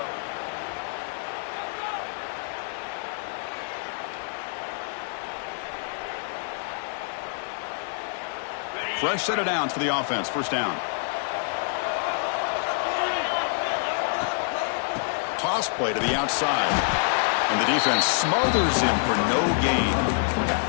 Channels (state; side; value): silent; right; 60 dB below the other